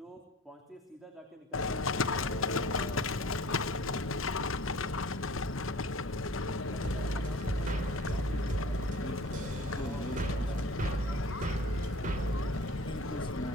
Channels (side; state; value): both; normal; correlation 0.44